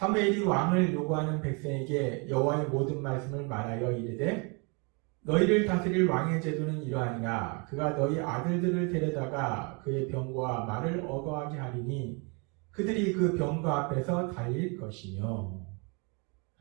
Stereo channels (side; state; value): left; quieter; 32.7 dB